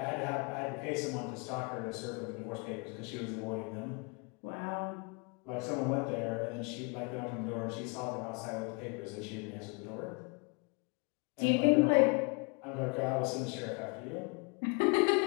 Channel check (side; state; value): right; quieter; 32.7 dB